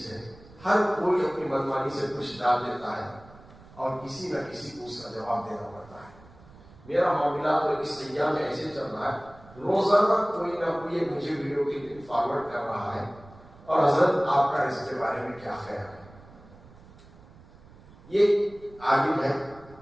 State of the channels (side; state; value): right; noise; rumble, 22 dB below the sound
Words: ہے، ہر کوئی اپنی منمانی سے کچھ ڈال دیتا ہے اور کسی نہ کسی کو اس کا جواب دینا پڑتا ہے. میرا معاملہ تو اس ایام میں ایسے چل رہا ہے، روزانہ کوئی نہ کوئی مجھے ویڈیو کے لنک فارورڈ کر رہا ہے اور حضرت آپ کا اس کے بارے میں کیا خیال ہے. یہ عالم ہے،